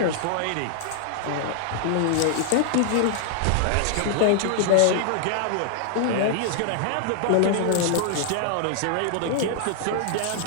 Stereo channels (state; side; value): different; both; correlation -0.01